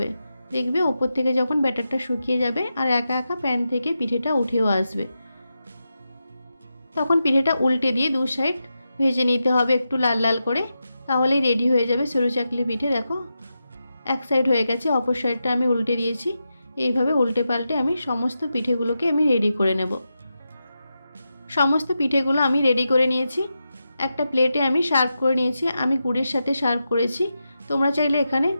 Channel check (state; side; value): inverted; both; correlation -0.89